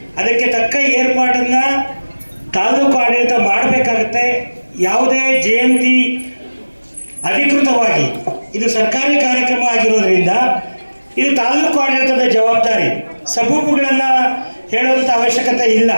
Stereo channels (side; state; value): both; inverted; correlation -1.00